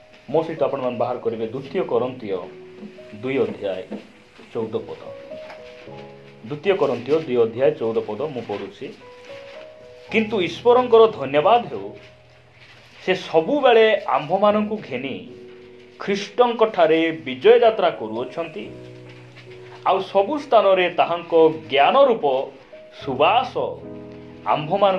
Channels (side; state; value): both; identical; correlation 1.00